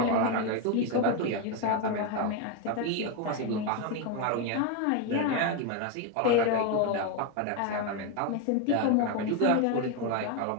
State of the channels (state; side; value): different; both; correlation 0.02